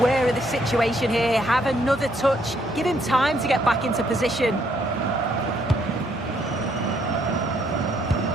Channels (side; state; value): both; normal; correlation 0.70